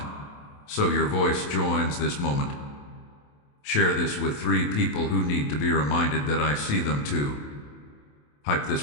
so your voice joins this moment. Share this with 3 people who need to be reminded that I see them too. Hype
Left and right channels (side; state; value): right; late; 28 ms